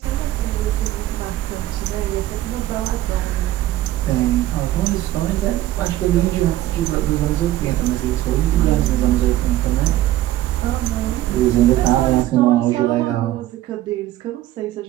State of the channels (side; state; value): left; quieter; 14.5 dB